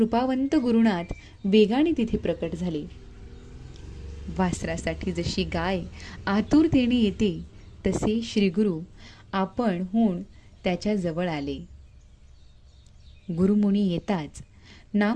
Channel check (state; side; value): identical; both; correlation 1.00